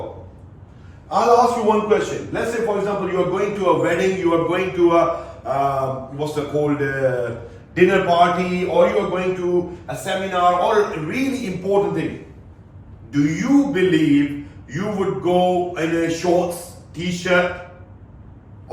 I'll ask you one question. Let's say, for example, you are going to a wedding, you are going to a dinner party, or you are going to a seminar, or a really important thing. Do you believe you would go in a shorts, t-shirt,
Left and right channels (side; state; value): both; identical; correlation 1.00